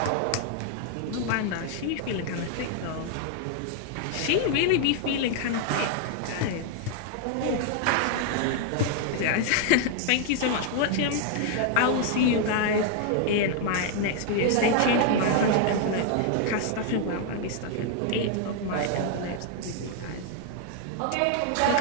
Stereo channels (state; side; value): different; both; correlation 0.00